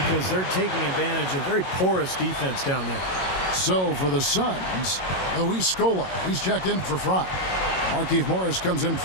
because they're taking advantage of very porous defense down there. So for the Suns, Luis Scola, he's checked in for Fry. Markieff Morris comes in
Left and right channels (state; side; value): late; right; 22 ms